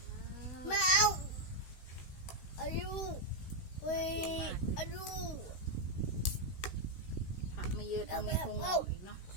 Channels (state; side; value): late; right; 16 ms